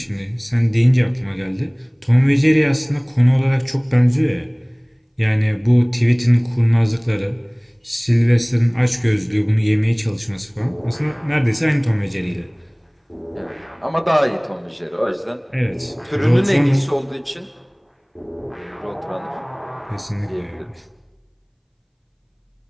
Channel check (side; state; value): both; identical; correlation 1.00